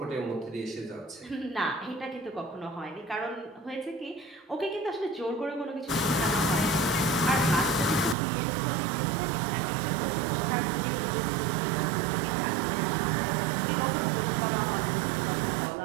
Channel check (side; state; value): left; drops out; at 8.2 s